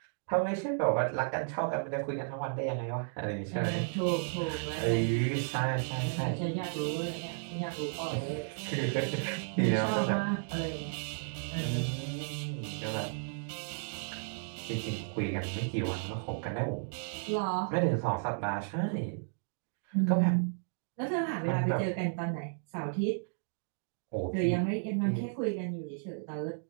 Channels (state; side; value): silent; left; digital silence